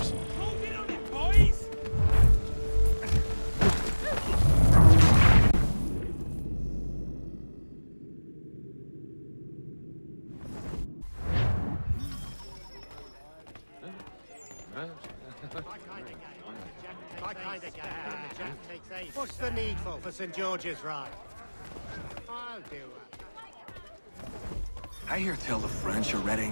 What's the needful for St. George's Ride? I'll do it. I hear tell the French are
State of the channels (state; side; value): inverted; both; correlation -1.00